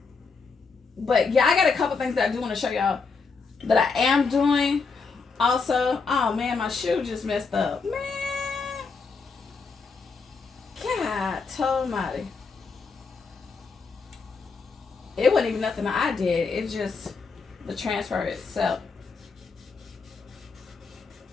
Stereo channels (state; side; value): quieter; right; 4.8 dB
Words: But, yeah, I got a couple things that I do want to show y'all that I am doing. Also, oh, man, my shoe just messed up. Man. God almighty. It wasn't even nothing I did. It's just the transfer itself.